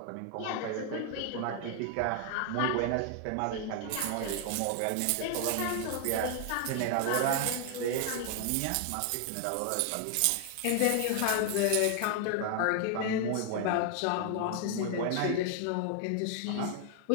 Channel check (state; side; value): different; both; correlation 0.00